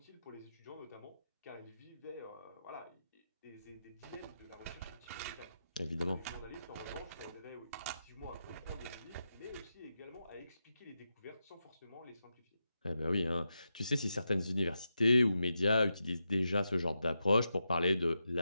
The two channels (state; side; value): inverted; both; correlation -0.88